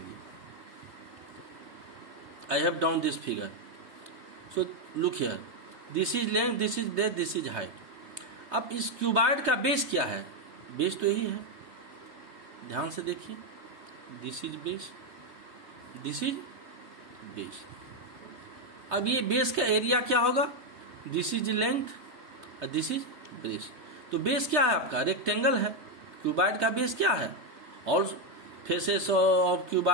I have down this figure. So look here, this is length, this is breath, this is height. अब इस cuboid का base क्या है, base तो यही है, ध्यान से देखिए. This is base, this is base. अब ये बेस का एरिया क्या होगा, दिस इज लेंथ और दिस इज बेस. तो बेस क्या है आपका, रेक्टेंगल है. क्यूबाइड का बेस क्या है, all faces of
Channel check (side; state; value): left; late; 3.2 ms